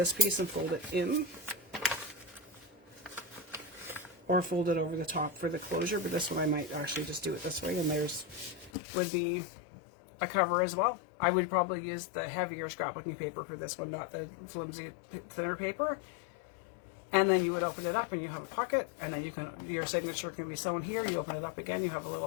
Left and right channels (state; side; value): drops out; right; at 8.7 s